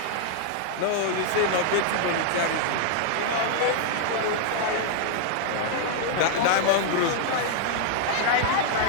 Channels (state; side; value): different; both; correlation -0.01